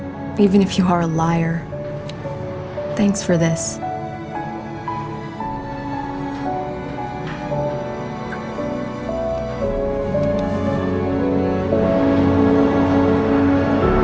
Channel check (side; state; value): both; identical; correlation 1.00